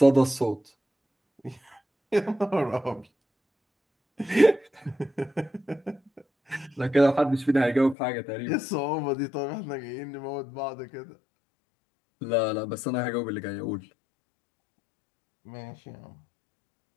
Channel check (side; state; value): right; drops out; at 8.0 s